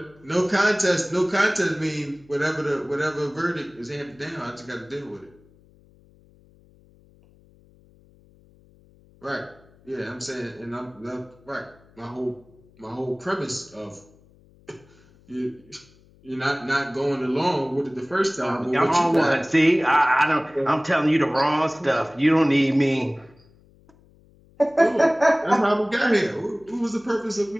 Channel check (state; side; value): noise; left; hum, 29 dB below the sound